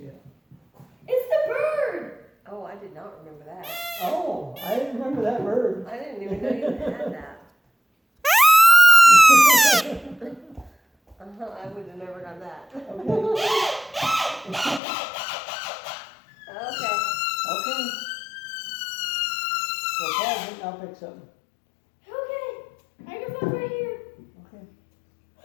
it. It's the bird. Oh, I did not remember that. Oh, I didn't remember that bird. I didn't even know you had that. I would have never done that. Okay. Okay. Okay. So pause it and I'll pick something. Okay. Microphone's right here. Okay.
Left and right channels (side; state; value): right; drops out; at 14.8 s